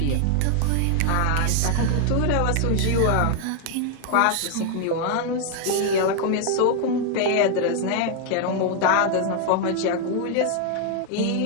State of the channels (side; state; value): both; different; correlation 0.00